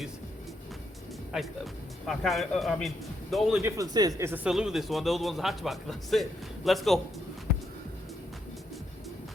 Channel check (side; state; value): both; normal; correlation 0.78